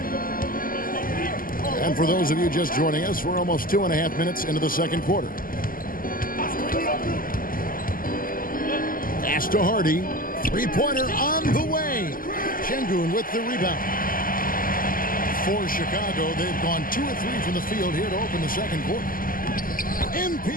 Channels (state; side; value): late; right; 0.41 ms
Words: And for those of you just joining us, we're almost 2.5 minutes into the second quarter. Pass to Hardy. 3-pointer on the way. Şengün with the rebound. For Chicago, they've gone 2 of 3 from the field here to open the second quarter. MP